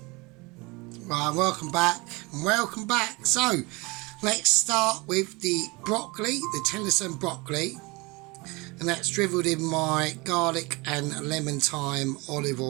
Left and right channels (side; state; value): left; quieter; 25.5 dB